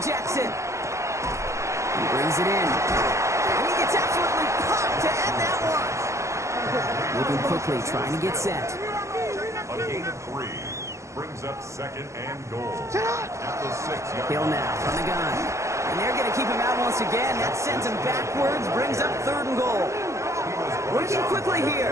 Jackson. He brings it in. And he gets absolutely popped to end that one. Moving quickly, trying to get set. A gain of 3 brings up second and goal at the 6-yard Hill now from the gun. And they're going to keep him out once again. That sends him backwards, brings up third and goal. Working quickly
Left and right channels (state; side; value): late; left; 0.14 ms